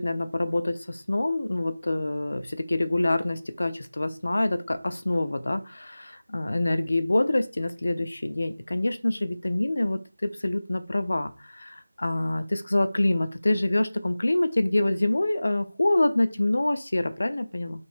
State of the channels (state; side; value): inverted; both; correlation -0.99